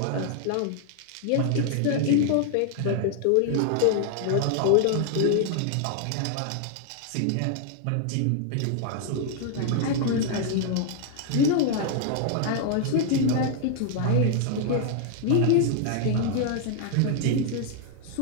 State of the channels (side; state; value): both; different; correlation 0.00